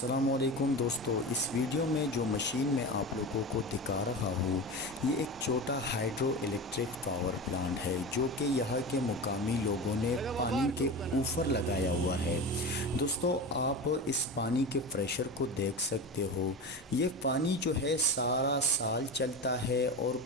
दोस्तों, इस वीडियो में जो मशीन मैं आप लोगों को दिखा रहा हूँ ये एक छोटा हाइड्रो इलेक्ट्रिक पावर प्लांट है जो कि यहाँ के मुकामी लोगों ने पानी के ऊपर लगाया हुआ है। दोस्तों, आप इस पानी के प्रेशर को देख सकते हो। ये पानी जो है सारा साल चलता है और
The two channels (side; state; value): both; normal; correlation 0.26